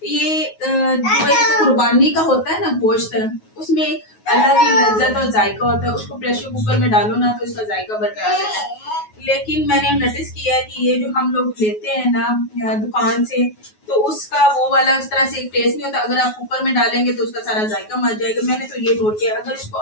ये जो एक कुर्बानी का होता है ना गोश्त, उसमें एक अलग ही लज्जत और जायका होता है। उसको प्रेशर कुकर में डालो ना तो इसका जायका बरकरार रहता है। लेकिन मैंने नोटिस किया है कि ये जो हम लोग लेते हैं ना दुकान से, तो उसका वो वाला उस तरह से एक टेस्ट नहीं होता। अगर आप कुकर में डालेंगे तो उसका सारा जायका मर जाएगा। मैंने तो ये नोट किया। अगर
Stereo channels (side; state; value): right; late; 9.4 ms